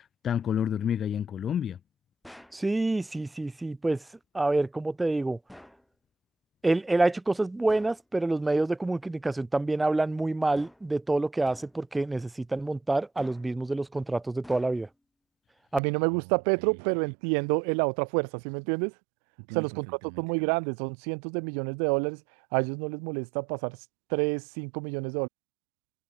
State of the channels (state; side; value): drops out; left; at 15.8 s